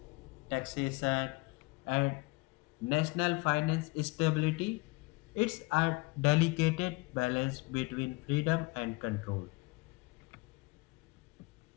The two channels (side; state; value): right; quieter; 25.7 dB